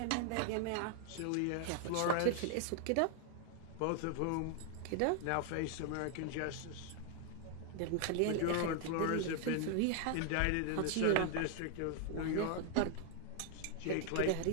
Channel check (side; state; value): both; different; correlation 0.00